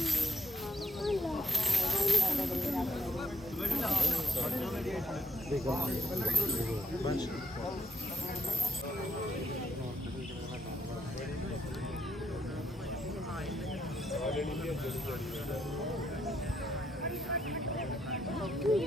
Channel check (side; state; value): both; normal; correlation 0.70